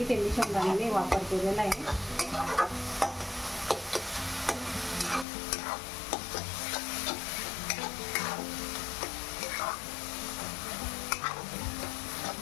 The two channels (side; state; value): right; drops out; at 5.2 s